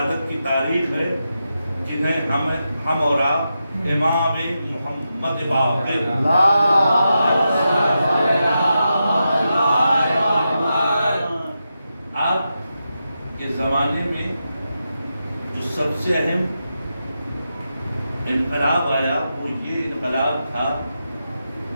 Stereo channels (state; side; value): inverted; both; correlation -0.88